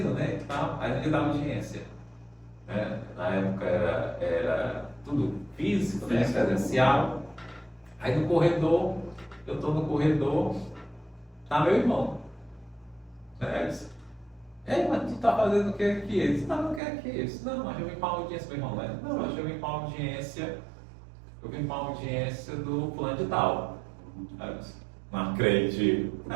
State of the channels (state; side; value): drops out; left; at 16.8 s